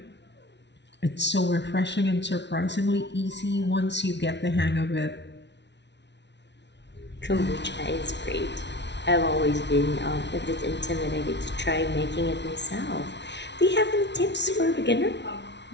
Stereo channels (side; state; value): right; late; 0.51 ms